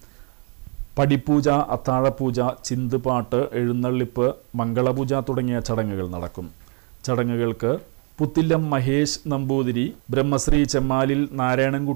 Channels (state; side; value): quieter; left; 38.6 dB